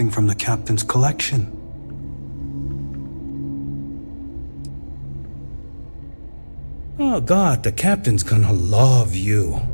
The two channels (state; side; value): inverted; both; correlation -1.00